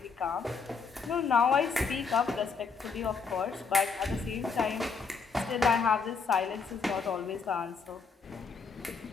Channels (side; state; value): right; quieter; 5.2 dB